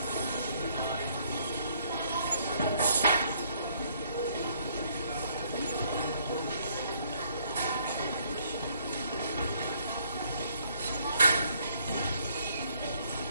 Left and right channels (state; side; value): inverted; both; correlation -0.66